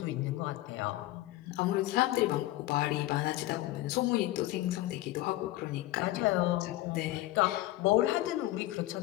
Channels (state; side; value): quieter; right; 16.8 dB